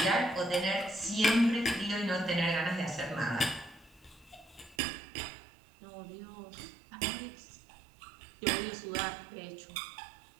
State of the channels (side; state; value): left; drops out; at 4.8 s